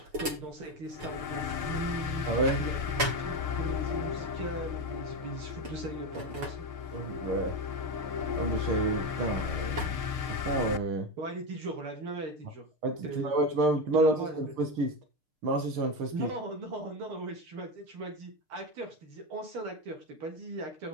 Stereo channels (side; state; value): left; late; 6.6 ms